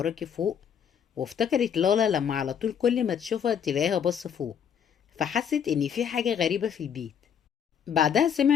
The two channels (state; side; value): quieter; right; 8.1 dB